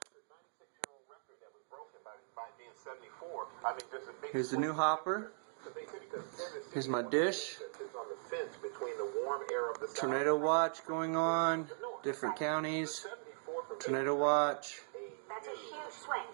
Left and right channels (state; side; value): silent; left; digital silence